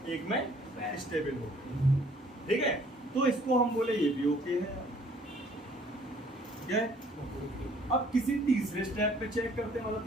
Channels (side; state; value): both; normal; correlation 0.59